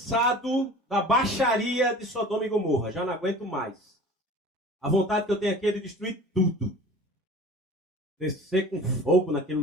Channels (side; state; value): both; normal; correlation 0.42